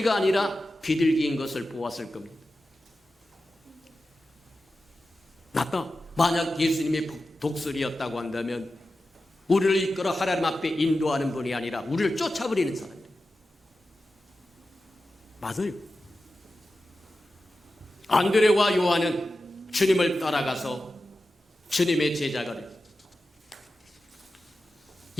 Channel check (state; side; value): normal; both; correlation 0.92